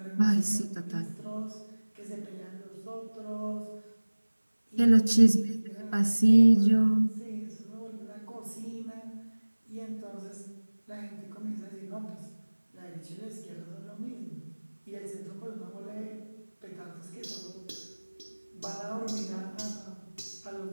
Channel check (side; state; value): both; inverted; correlation -1.00